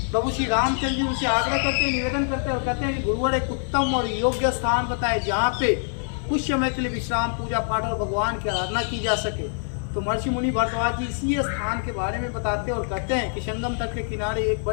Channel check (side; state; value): right; silent; digital silence